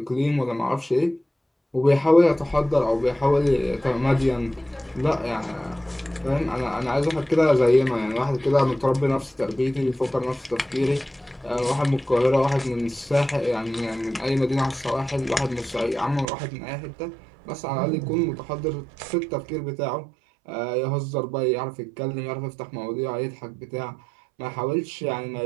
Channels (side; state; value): left; drops out; at 16.2 s